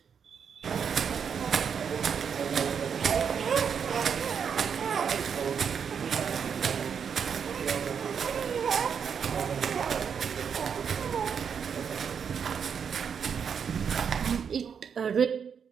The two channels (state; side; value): quieter; left; 7.0 dB